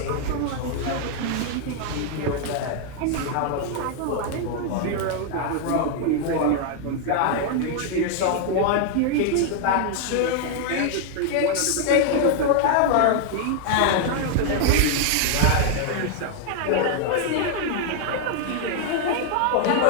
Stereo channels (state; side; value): different; both; correlation 0.00